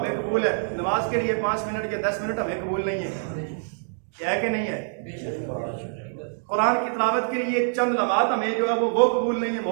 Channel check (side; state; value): left; silent; digital silence